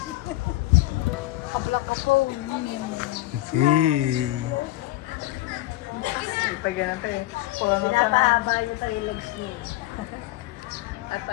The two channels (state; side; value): quieter; right; 17.1 dB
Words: Kablak ako. Pag ganun pa eh. Pinapahaba niyo pa yung legs niya. At